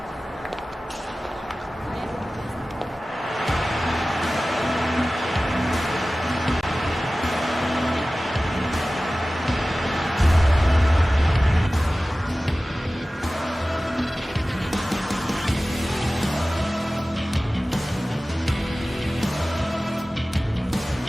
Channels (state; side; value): normal; both; correlation 0.97